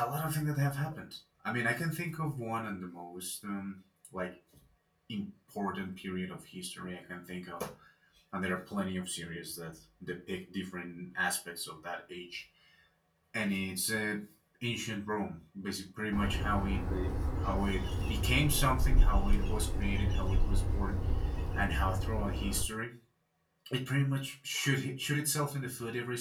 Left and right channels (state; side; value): identical; both; correlation 1.00